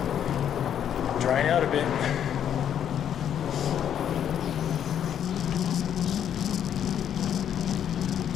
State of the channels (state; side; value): quieter; right; 9.4 dB